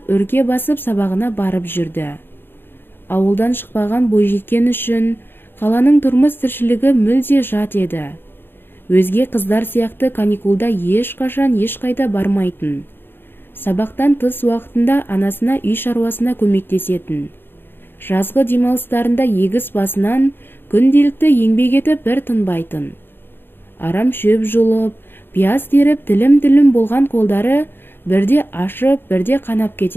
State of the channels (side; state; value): right; late; 0.10 ms